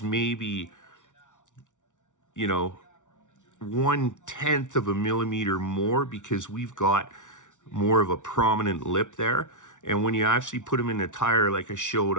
maybe, you know, 1/10 of a millimeter more because we've got more of a prominent lip there. And when you actually put them in the tire, like I showed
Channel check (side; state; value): right; late; 0.86 ms